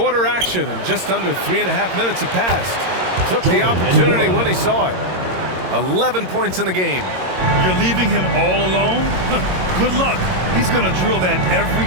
action, and just under 3.5 minutes have passed. Took the opportunity when he saw it. 11 points in the game. You're leaving him all alone? Good luck. He's going to drill that every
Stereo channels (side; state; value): left; late; 22 ms